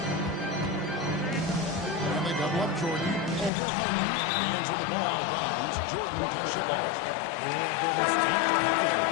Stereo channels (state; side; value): drops out; right; at 3.5 s